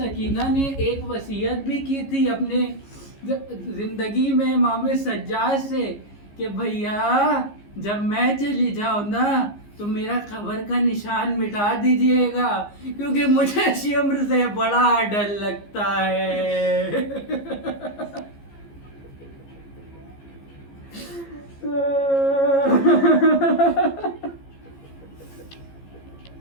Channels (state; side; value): late; right; 15 ms